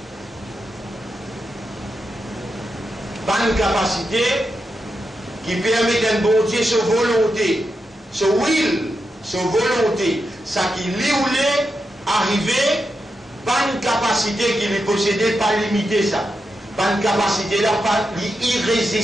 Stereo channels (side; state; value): both; normal; correlation 0.87